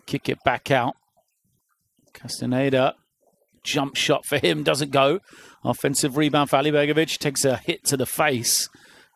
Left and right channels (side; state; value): both; identical; correlation 1.00